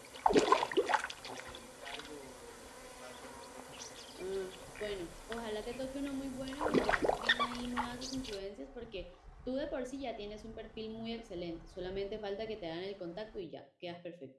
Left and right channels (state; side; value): identical; both; correlation 1.00